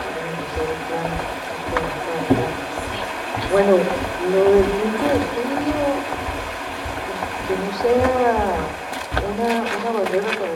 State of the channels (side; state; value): both; identical; correlation 1.00